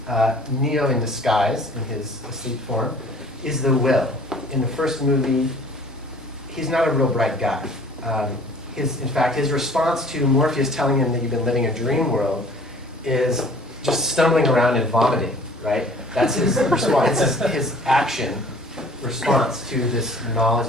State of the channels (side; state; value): both; normal; correlation 0.51